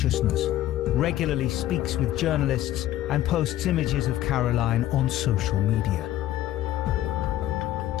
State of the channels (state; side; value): quieter; right; 13.6 dB